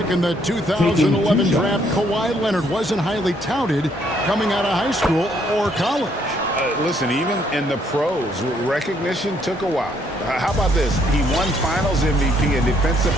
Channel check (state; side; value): normal; both; correlation 0.69